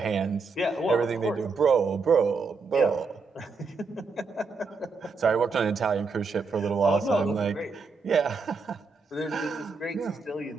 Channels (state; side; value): quieter; left; 4.4 dB